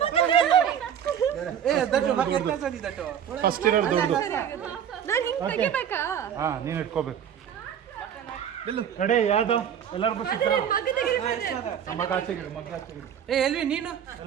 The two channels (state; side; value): quieter; left; 9.0 dB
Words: ಫಸ್ಟ್ ಇರೋರು ದೊಡ್ಡದು ಹಾ ನೀನು ಇಟ್ಕೋಬೇಕು ಕಡೆ ಯಾವ್ದು ಎಲ್ಲರಿಗೂ ಸಿಕ್ಕ ಮಗ ಆಚೆ ಗಿಡು ಮಗ ಆಚೆ ಗಿಡು ಎಲ್ವಿ ನೀನು